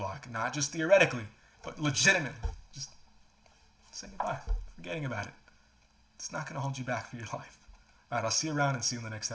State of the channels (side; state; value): both; identical; correlation 1.00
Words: Not just theoretically, but legitimately. Just say goodbye. Forgetting about it. It's not going to hold you back for your life. All right, I'll see you around and see you in the next